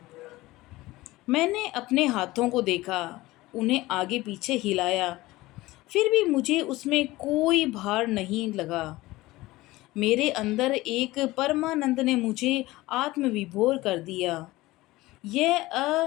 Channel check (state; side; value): quieter; right; 18.9 dB